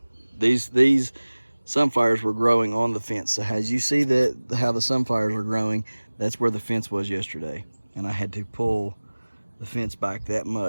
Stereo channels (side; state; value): both; inverted; correlation -1.00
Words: These sunflowers were growing on the fence. So as you see how the sunflowers are growing, that's where the fence was yesterday. And I had to pull the fence back that